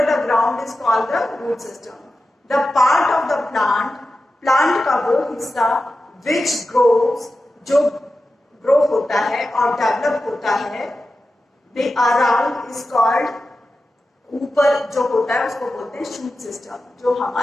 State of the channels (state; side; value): normal; both; correlation 0.93